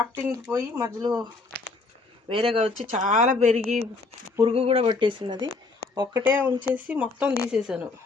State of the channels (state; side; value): quieter; right; 3.8 dB